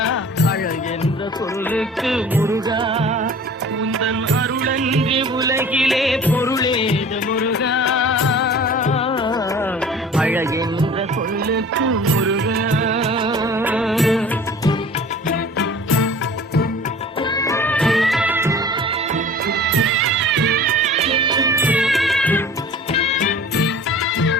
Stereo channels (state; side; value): normal; both; correlation 0.44